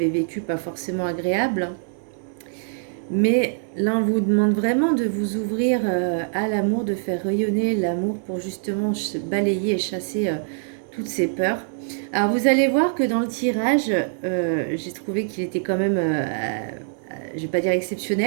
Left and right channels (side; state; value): left; silent; digital silence